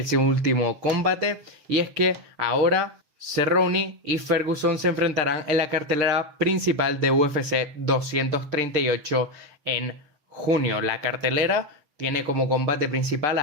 combate. Y es que ahora Cerrone y Ferguson se enfrentarán en la cartelera principal de UFC 238 en junio. La cartelera tiene como combate principal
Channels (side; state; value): left; late; 6.7 ms